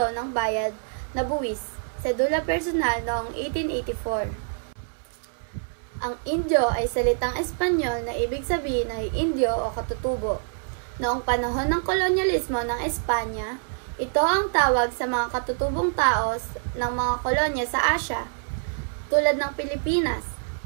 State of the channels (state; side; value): silent; left; 61 dB below the other